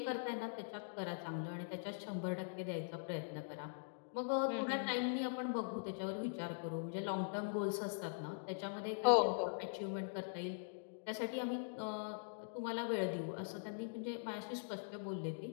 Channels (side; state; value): right; silent; digital silence